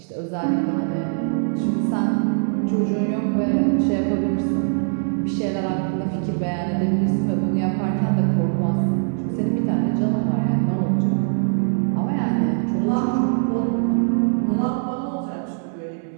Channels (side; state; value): left; silent; 64 dB below the other